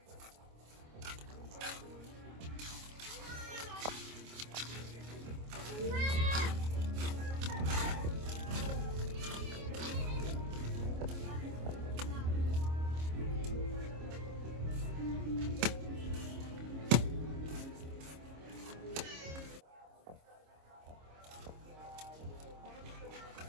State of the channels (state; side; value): late; left; 26 ms